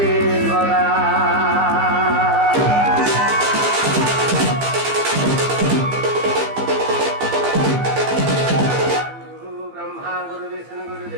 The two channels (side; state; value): left; late; 15 ms